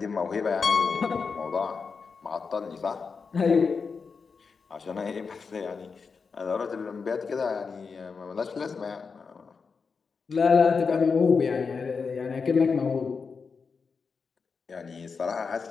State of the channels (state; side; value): quieter; right; 5.2 dB